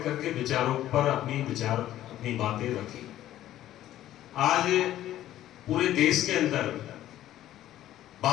के विचारों पर अपनी बातें रखी। आज पूरे देश के अंदर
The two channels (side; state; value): right; quieter; 13.1 dB